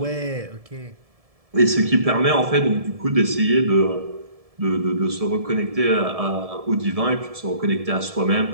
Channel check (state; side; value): late; left; 1.7 ms